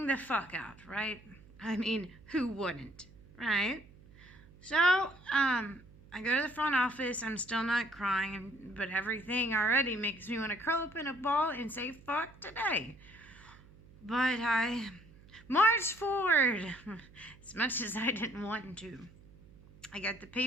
the fuck out, right? I mean, who wouldn't, right? So, I go to the front office, I'm still not crying, but everything already makes me want to curl up in a ball and say, fuck today. But I marched forward, as much as I didn't want to. I got the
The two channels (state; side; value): noise; right; hum, 23 dB below the sound